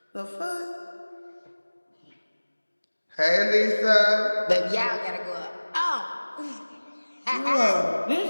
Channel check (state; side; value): inverted; both; correlation -1.00